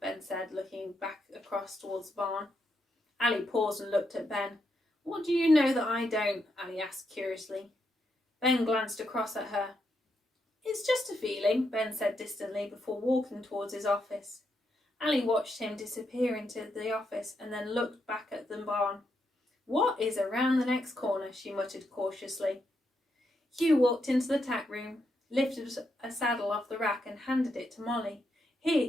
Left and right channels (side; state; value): both; normal; correlation 0.81